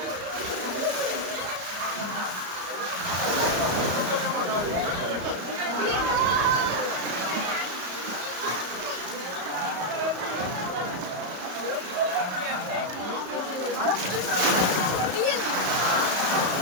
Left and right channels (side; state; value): left; late; 34 ms